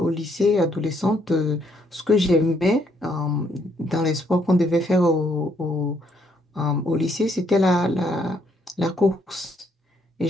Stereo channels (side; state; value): both; normal; correlation 0.71